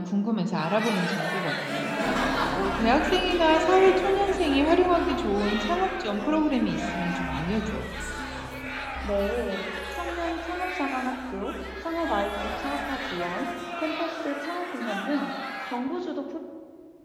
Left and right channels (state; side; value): identical; both; correlation 1.00